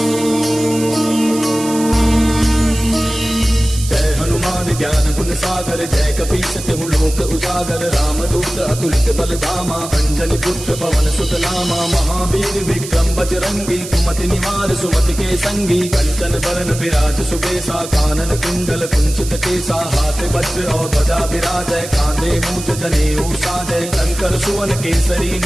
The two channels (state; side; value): noise; right; hiss, 11 dB below the sound